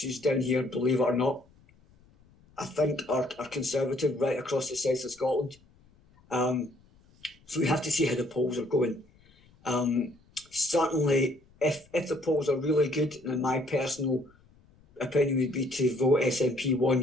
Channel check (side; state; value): left; noise; rumble, 30 dB below the sound